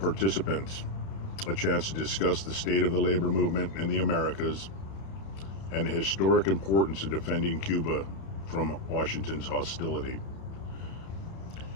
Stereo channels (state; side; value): late; right; 31 ms